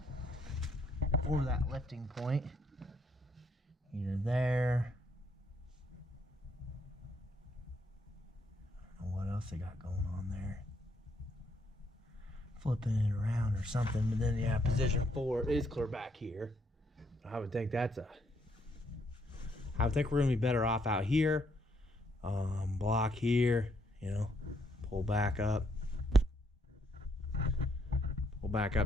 that lifting point. Either there else they got going on there. Flipping it around or something, but then yeah, position 4 is clear back here. I would think I would think we're gonna be better off out here. Block here, you know, pull back up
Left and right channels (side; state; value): both; normal; correlation 0.72